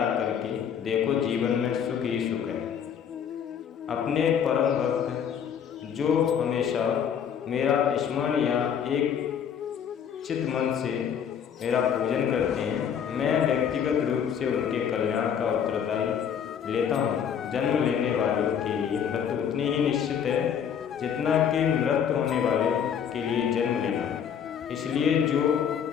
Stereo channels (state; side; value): quieter; right; 8.2 dB